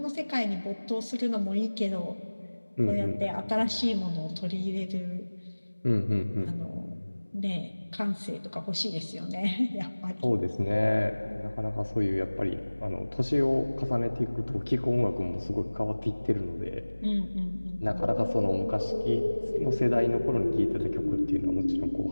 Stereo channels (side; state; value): both; inverted; correlation -1.00